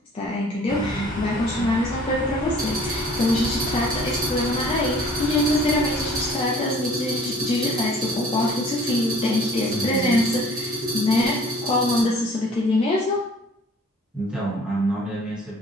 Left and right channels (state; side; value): normal; both; correlation 0.51